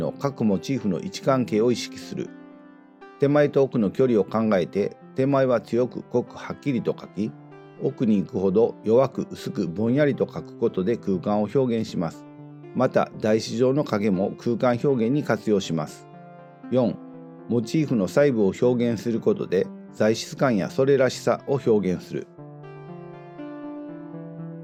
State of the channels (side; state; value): both; identical; correlation 1.00